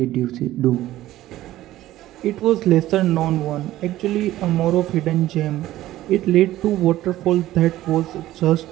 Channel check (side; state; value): left; quieter; 14.9 dB